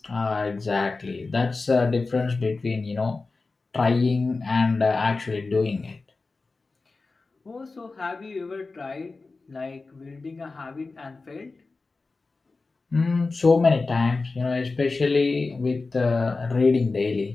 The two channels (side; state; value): right; quieter; 3.8 dB